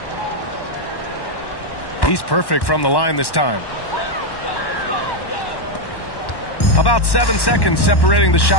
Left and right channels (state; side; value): late; right; 1.1 ms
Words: He's perfect from the line this time. About 7 seconds separating the